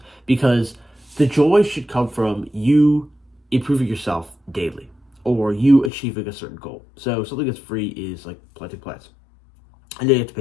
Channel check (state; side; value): drops out; right; at 5.9 s